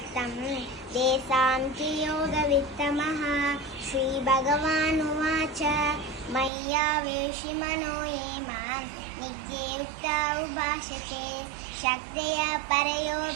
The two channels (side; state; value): left; drops out; at 6.5 s